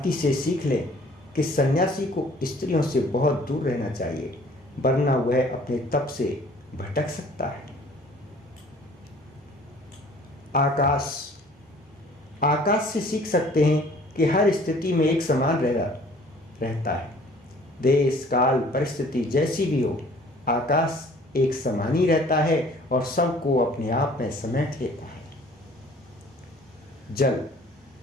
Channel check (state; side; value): normal; both; correlation 0.53